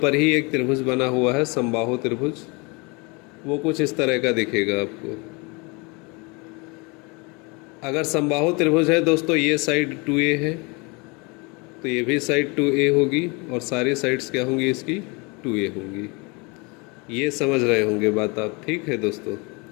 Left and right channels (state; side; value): quieter; right; 28.9 dB